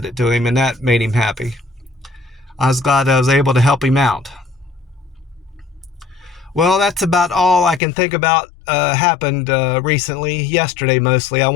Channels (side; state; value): right; drops out; at 7.8 s